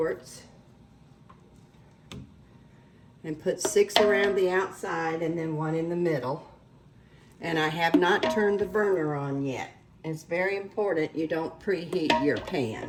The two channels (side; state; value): both; identical; correlation 1.00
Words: and put 6 around the outside and then 1 in the middle. And I have not turned the burner on yet. It's very important you don't preheat your